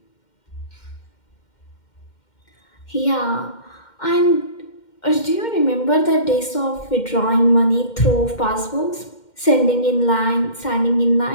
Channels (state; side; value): late; right; 2.1 ms